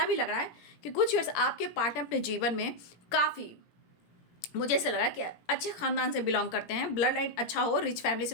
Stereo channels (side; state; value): right; late; 17 ms